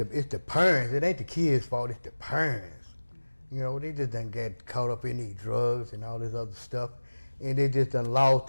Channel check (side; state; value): both; inverted; correlation -1.00